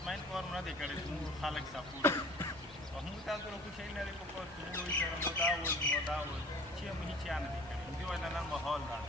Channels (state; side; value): normal; both; correlation 0.47